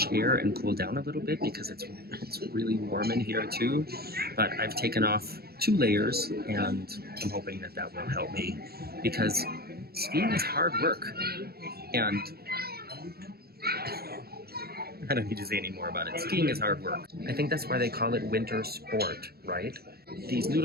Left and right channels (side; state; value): left; late; 0.45 ms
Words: air and cool down a little bit because it's really warm in here too. But I've taken off 2 layers, and I'm hoping that that will help me because skiing is hard work, and I don't need to say any more about it. Skiing is hard work. I think that's why they call it winter sport, right? These